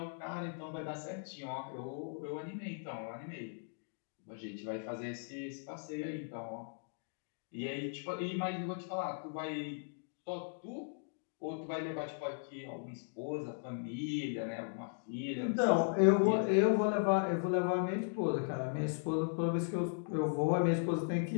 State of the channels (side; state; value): right; silent; digital silence